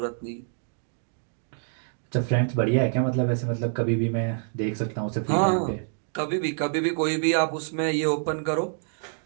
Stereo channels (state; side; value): silent; left; digital silence